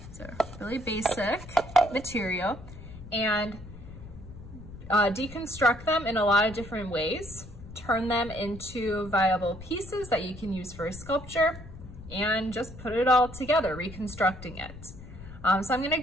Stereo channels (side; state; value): left; noise; rumble, 15 dB below the sound